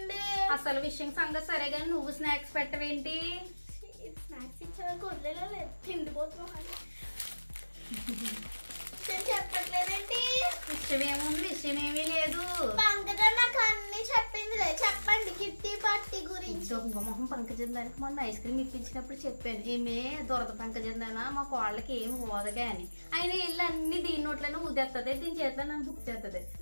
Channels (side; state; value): both; inverted; correlation -1.00